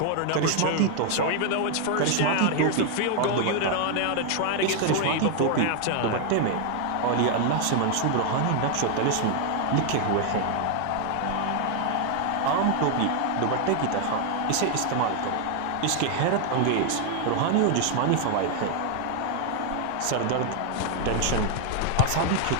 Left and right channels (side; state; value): both; different; correlation 0.00